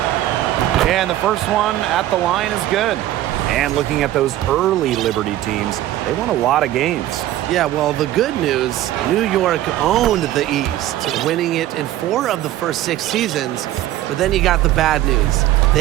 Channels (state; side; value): quieter; left; 14.0 dB